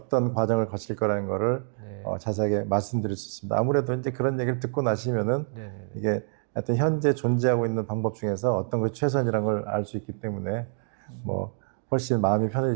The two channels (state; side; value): silent; left; 57 dB below the other